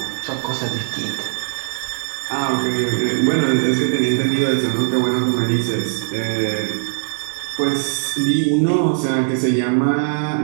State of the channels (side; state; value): left; silent; digital silence